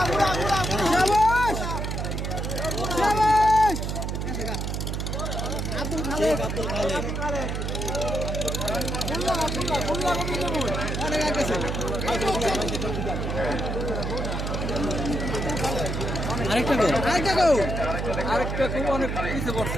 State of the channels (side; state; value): right; noise; hum, 2 dB below the sound